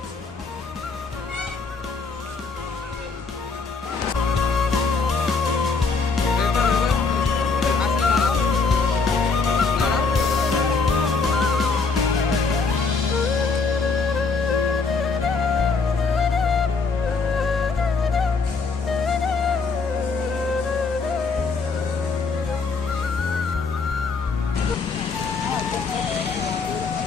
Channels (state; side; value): quieter; right; 4.5 dB